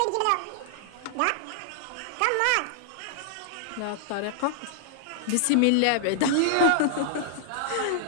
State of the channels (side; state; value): both; different; correlation -0.01